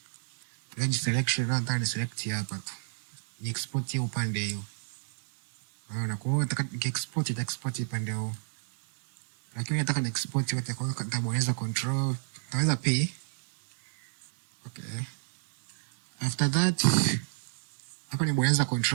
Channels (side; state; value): left; silent; digital silence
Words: range selection, nataka ni select hapa tu. Ni export hii upande hiyo. Unaona, kwa hiyo nataka export upande huo. Lakini nataka ni export yote, kwa hiyo nitabonyeza control, nitaweza P. Okay. After that, hapa nibonyeza